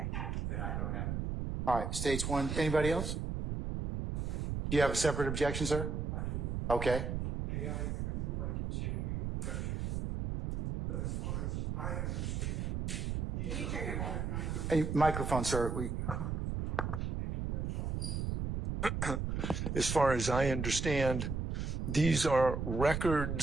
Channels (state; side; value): noise; right; rumble, 2 dB below the sound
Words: Then I don't have an objection. All right, State's one. Anybody else? Do you have a separate objection, sir? I do. Okay. May I remove my continuing objection? But as far as I understand, Hey, microphone, sir. As far as I understand, these are